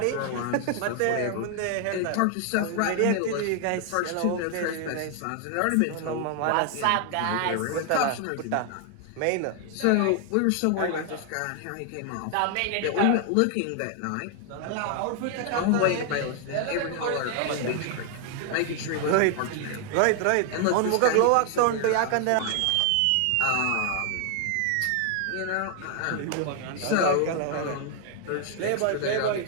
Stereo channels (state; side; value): different; both; correlation 0.00